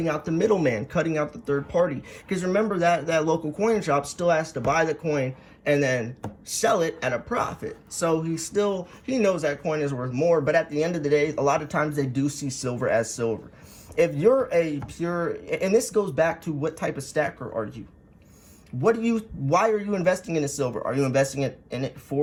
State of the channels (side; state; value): both; identical; correlation 1.00